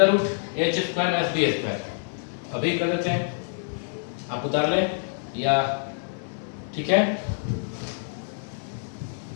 root H square minus B square. अभी कर देते हैं, आप उतार लें या ठीक है।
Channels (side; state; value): right; silent; digital silence